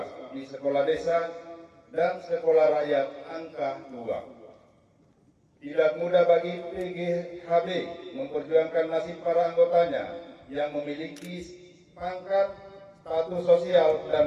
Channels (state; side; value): identical; both; correlation 1.00